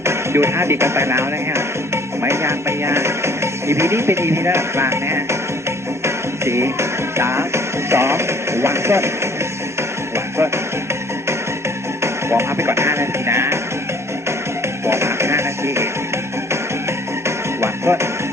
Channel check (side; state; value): both; normal; correlation 0.56